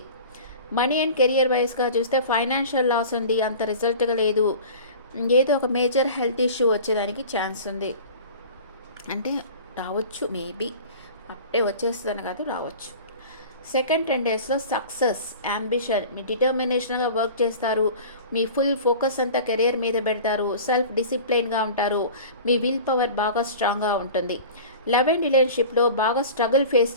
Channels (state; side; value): inverted; both; correlation -0.39